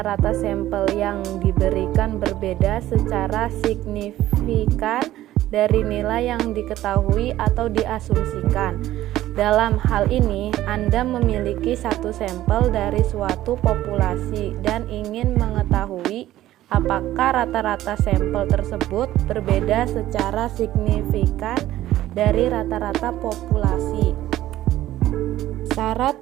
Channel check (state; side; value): quieter; left; 14.3 dB